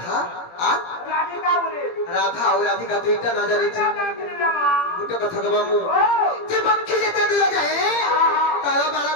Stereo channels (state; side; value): late; right; 17 ms